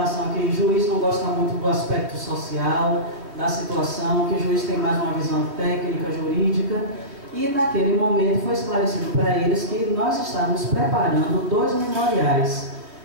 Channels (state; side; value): late; left; 3.2 ms